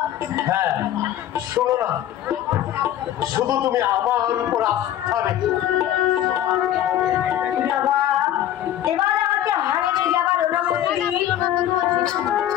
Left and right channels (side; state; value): right; quieter; 11.8 dB